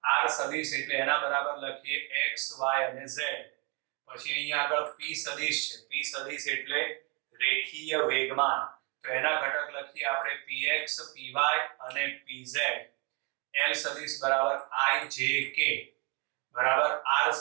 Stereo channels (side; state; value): left; quieter; 31.3 dB